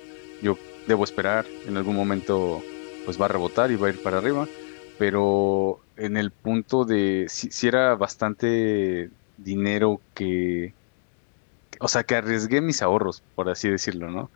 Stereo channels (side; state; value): right; silent; digital silence